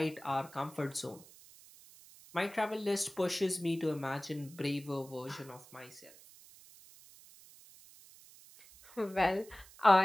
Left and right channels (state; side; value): noise; right; hiss, 22 dB below the sound